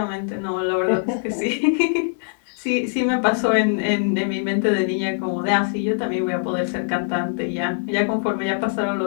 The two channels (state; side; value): silent; right; digital silence